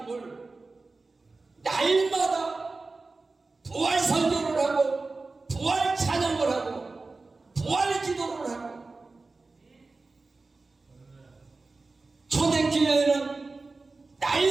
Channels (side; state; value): left; quieter; 3.7 dB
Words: 날마다 부활 설교를 하고 부활 찬양을 하고 부활 기도를 하고, 초대교회는